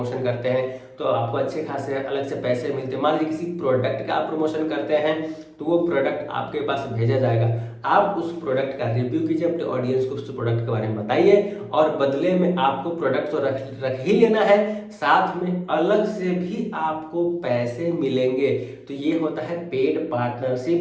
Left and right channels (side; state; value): both; identical; correlation 1.00